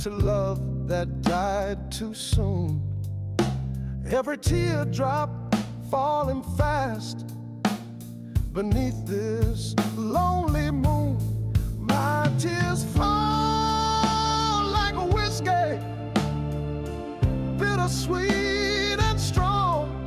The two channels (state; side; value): identical; both; correlation 1.00